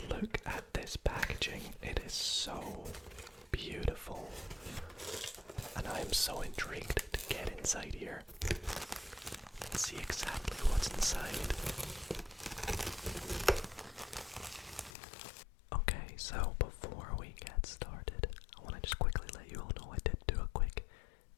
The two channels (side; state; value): right; drops out; at 15.0 s